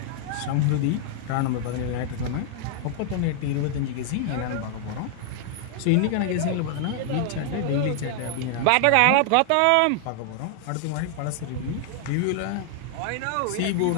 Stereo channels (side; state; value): both; different; correlation 0.00